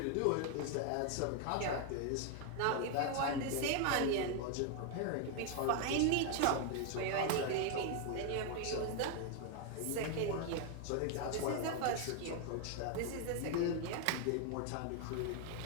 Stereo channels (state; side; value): different; both; correlation 0.01